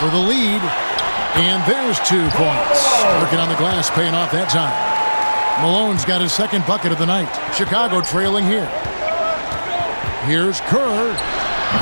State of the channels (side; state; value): both; inverted; correlation -1.00